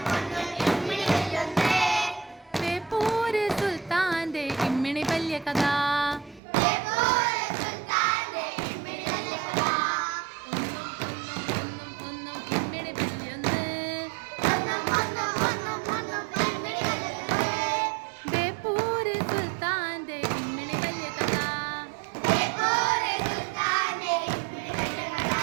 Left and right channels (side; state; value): left; drops out; at 6.4 s